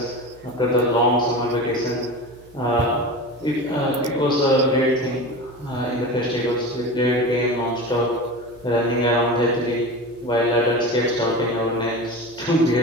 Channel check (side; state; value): right; noise; hum, 25 dB below the sound